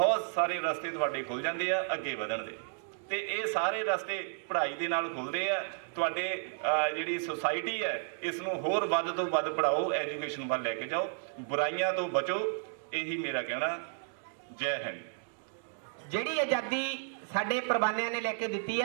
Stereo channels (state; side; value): silent; left; digital silence